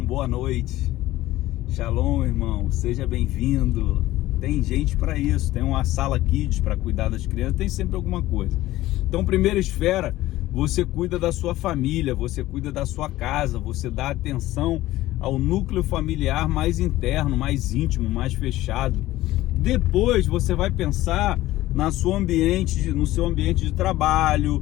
boa noite. Shalom, irmão, seja bem-vindo. Tem gente para isso, tem uma sala kids para cuidar das crianças, tem sempre alguma coisa. Então, primeira esfera, você cuida da sua família, você cuida da sua casa, você dá atenção ao núcleo familiar mais interno, mais íntimo, mais fechado. Depois você vai pensar no seu ambiente de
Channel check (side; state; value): right; quieter; 16.2 dB